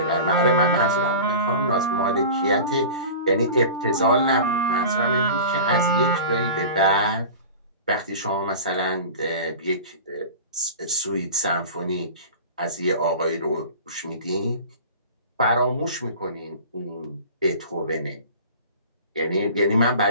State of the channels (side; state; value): both; inverted; correlation -0.36